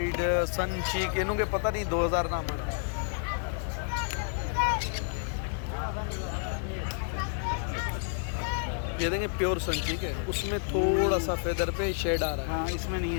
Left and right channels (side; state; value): right; silent; 58 dB below the other